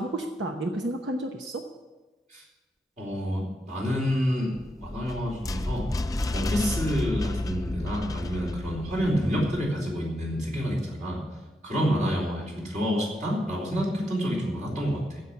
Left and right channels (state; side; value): normal; both; correlation 0.83